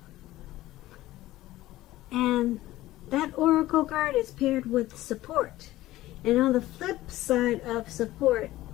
And that oracle card is paired with support. And on the flip side of support,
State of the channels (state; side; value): quieter; right; 16.2 dB